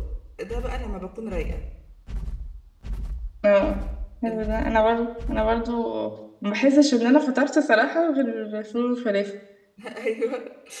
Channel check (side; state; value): both; identical; correlation 1.00